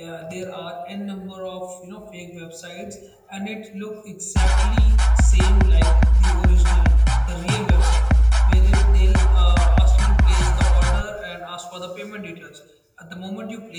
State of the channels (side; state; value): both; identical; correlation 1.00